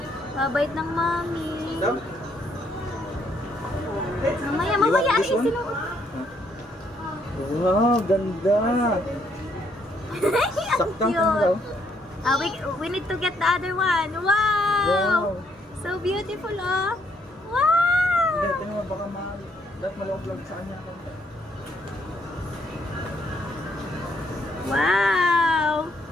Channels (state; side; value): normal; both; correlation 0.71